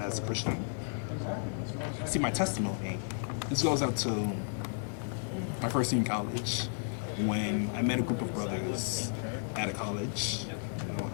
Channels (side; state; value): right; silent; 56 dB below the other